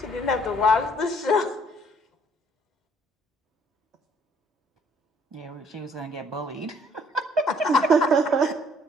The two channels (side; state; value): both; normal; correlation 0.62